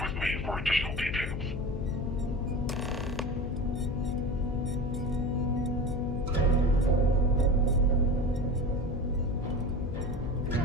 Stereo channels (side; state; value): left; noise; hum, 5 dB below the sound